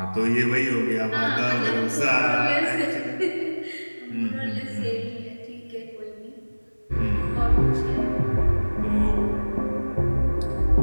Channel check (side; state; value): both; inverted; correlation -1.00